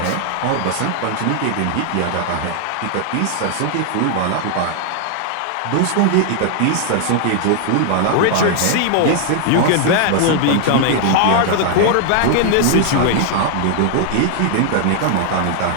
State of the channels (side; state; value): both; different; correlation 0.00